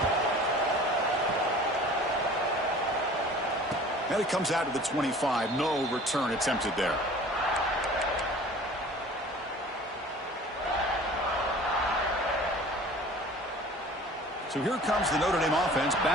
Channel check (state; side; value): normal; both; correlation 0.45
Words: And it comes out to the 25. No return attempted there. So here comes the Notre Dame offense